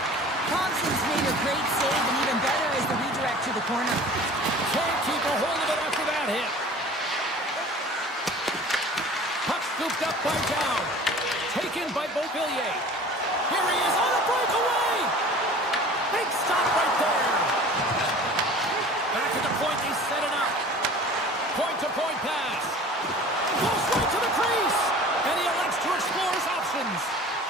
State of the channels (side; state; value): both; normal; correlation 0.43